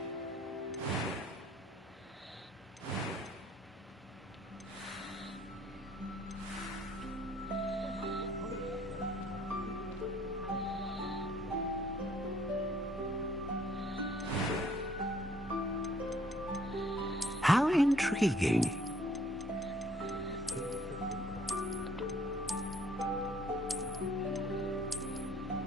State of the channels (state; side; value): normal; both; correlation 0.60